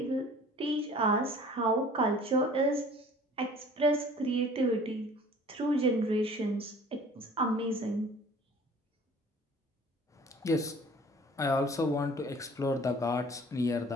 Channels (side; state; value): both; normal; correlation 0.49